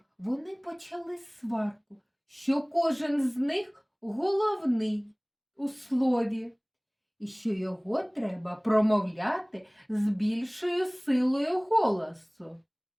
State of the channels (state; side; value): identical; both; correlation 1.00